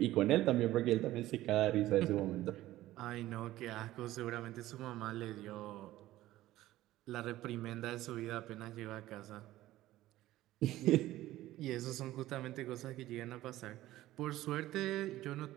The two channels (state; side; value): quieter; left; 15.5 dB